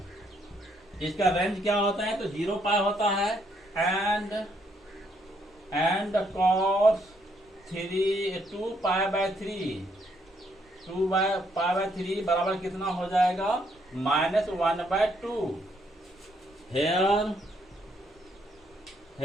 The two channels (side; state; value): both; normal; correlation 0.72